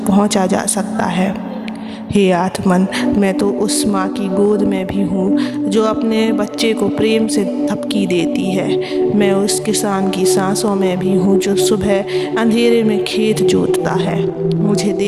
पहुंचा जा सकता है। हे आत्मन, मैं तो उस माँ की गोद में भी हूँ जो अपने बच्चे को प्रेम से थपकी देती है। मैं उस किसान की सांसों में भी हूँ जो सुबह अंधेरे में खेत जोतता है। मुझे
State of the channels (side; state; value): both; identical; correlation 1.00